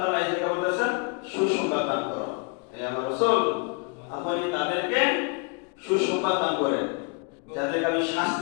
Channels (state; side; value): quieter; right; 33.4 dB